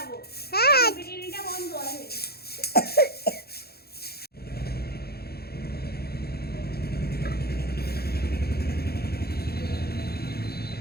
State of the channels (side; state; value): right; late; 0.46 ms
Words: হ্যাঁ বিরিয়ানিটা বন্ধ আছে।